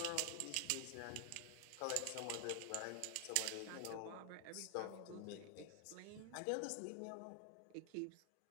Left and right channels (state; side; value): different; both; correlation 0.00